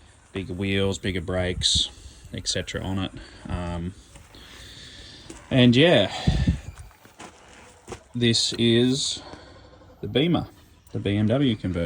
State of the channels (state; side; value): identical; both; correlation 1.00